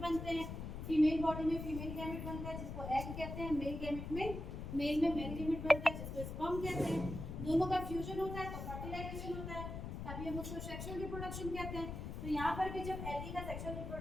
हैं। फीमेल बॉडी में फीमेल गैमेट बनता है जिसको एग कहते हैं, मेल गैमेट में मेल गैमेट बनता है जिसको स्पर्म कहते हैं। दोनों का फ्यूजन होता है तो फर्टिलाइजेशन होता है, तभी हम उसको सेक्सुअल रिप्रोडक्शन कहते हैं। तो यहाँ पर भी जब एलगी का सेक्सुअल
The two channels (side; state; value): left; noise; rumble, 6 dB below the sound